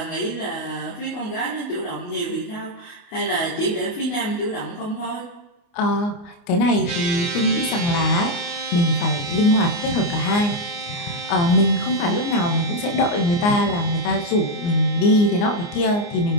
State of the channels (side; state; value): right; late; 29 ms